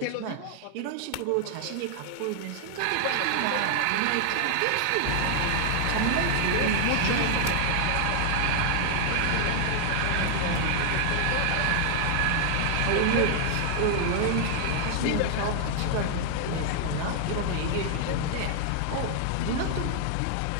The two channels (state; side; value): different; both; correlation 0.00